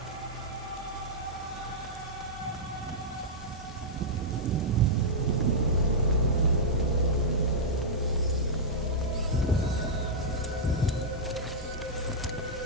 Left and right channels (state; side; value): normal; both; correlation -0.10